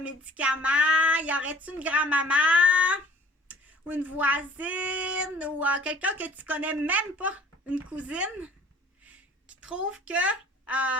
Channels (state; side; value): normal; both; correlation 0.52